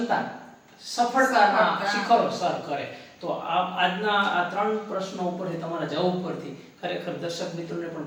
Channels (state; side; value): identical; both; correlation 1.00